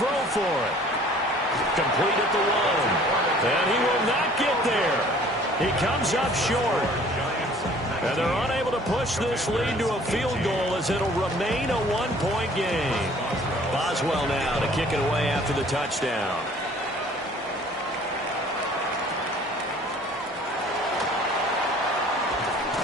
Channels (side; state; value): both; normal; correlation 0.53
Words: for it. Complete at the 1. And he will not get there. He comes up short. And they're unable to push this lead to a field goal as it'll remain a 1-point game. Boswell now to kick it away after the touchdown.